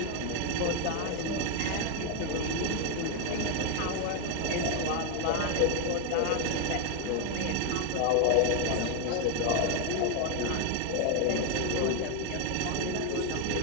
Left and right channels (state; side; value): different; both; correlation 0.01